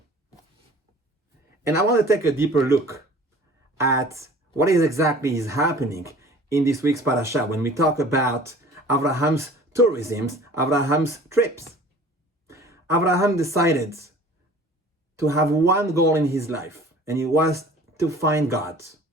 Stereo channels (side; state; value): both; normal; correlation 0.46